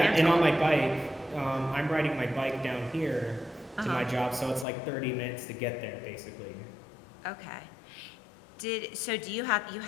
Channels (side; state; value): right; drops out; at 4.7 s